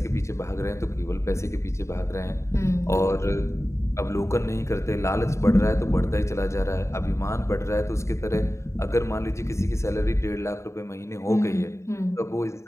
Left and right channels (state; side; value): late; right; 0.14 ms